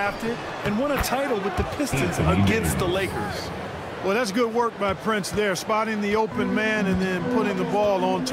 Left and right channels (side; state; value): both; identical; correlation 1.00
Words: and won a title with the Pistons against the Lakers. Well, that's good work by Prince there, spotting the open man and then putting the ball on